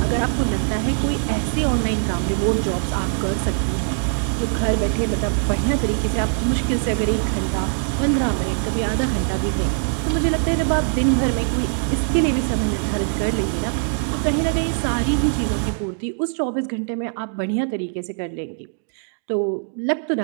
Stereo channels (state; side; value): silent; left; digital silence